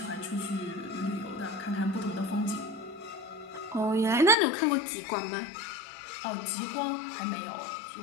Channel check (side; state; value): right; drops out; at 4.4 s